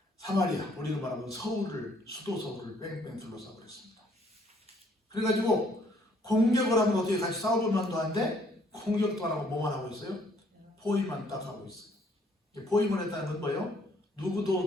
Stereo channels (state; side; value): normal; both; correlation 0.64